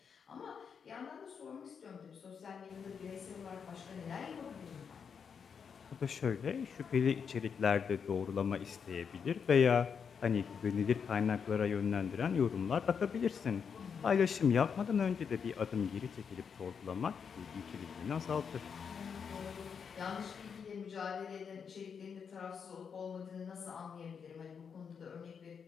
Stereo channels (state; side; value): quieter; right; 6.6 dB